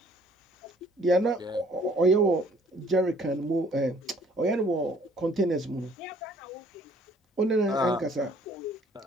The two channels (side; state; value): both; normal; correlation 0.59